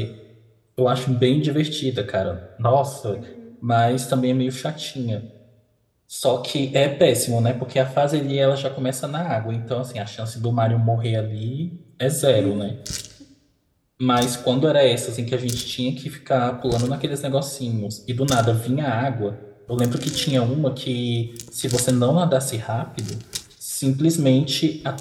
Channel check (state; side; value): identical; both; correlation 1.00